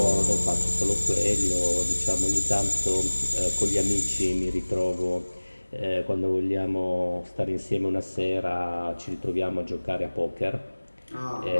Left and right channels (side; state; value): both; inverted; correlation -1.00